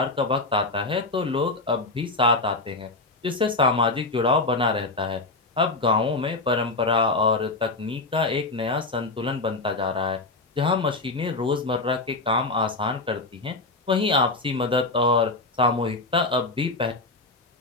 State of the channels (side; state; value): right; quieter; 3.2 dB